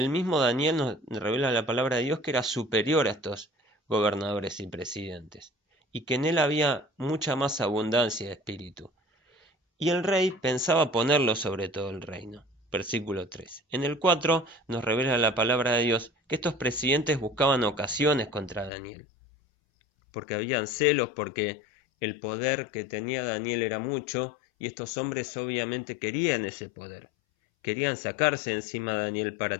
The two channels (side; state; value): right; drops out; at 18.7 s